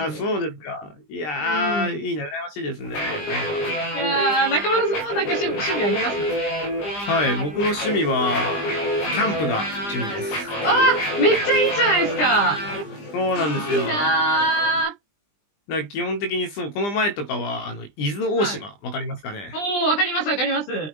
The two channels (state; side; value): late; right; 20 ms